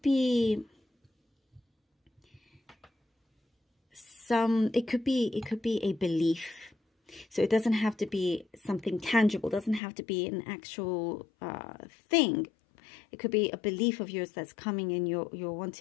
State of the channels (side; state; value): right; drops out; at 9.8 s